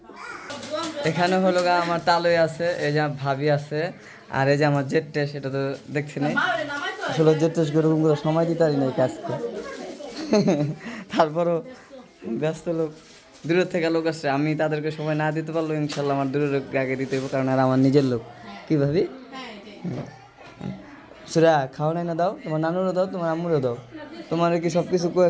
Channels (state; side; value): identical; both; correlation 1.00